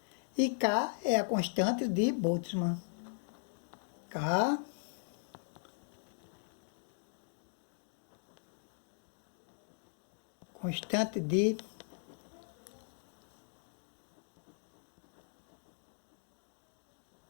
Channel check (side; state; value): right; silent; digital silence